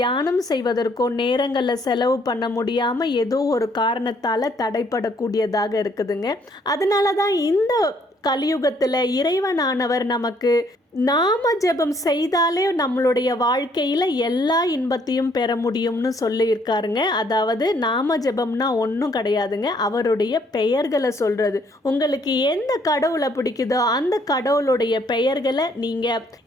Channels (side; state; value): both; normal; correlation 0.66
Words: செய்வதற்கோ நேரங்களில் செலவு பண்ண முடியாம ஏதோ ஒரு காரணத்தால தடைப்படக்கூடியதாக இருக்குதுங்க. அதனால தான் இந்த கலியுகத்துல இறைவனானவர் நமக்கு நாம ஜெபம் செய்தாலே நம்மளுடைய வாழ்க்கையில எல்லா இன்பத்தையும் பெற முடியும்னு சொல்லியிருக்காருங்க. அதாவது நாம ஜெபம்னா ஒன்றும் கிடையாதுங்க, அவருடைய பெயர்களை சொல்றது. உங்களுக்கு எந்த கடவுளை பிடிக்குதோ அந்த கடவுளுடைய பெயர்களை நீங்க